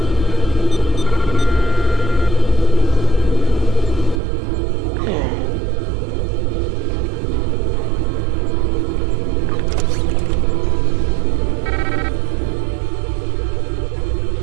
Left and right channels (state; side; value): drops out; left; at 4.2 s